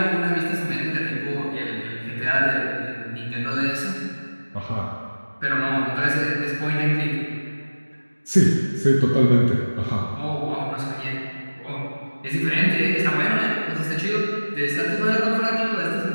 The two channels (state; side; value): inverted; both; correlation -1.00